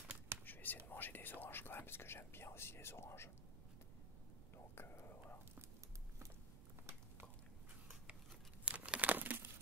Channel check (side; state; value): right; noise; rumble, 11 dB below the sound